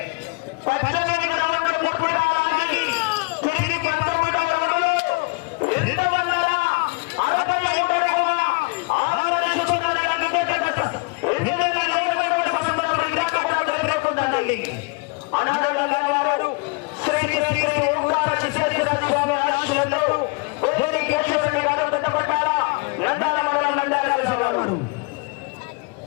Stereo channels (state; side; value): quieter; right; 29.7 dB